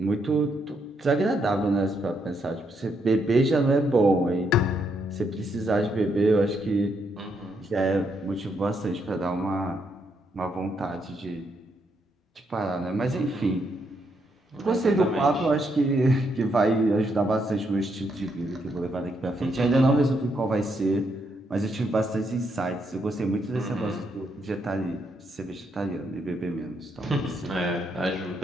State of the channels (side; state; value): both; normal; correlation 0.77